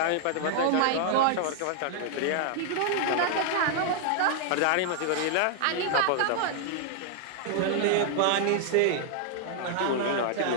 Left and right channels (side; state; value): both; different; correlation -0.01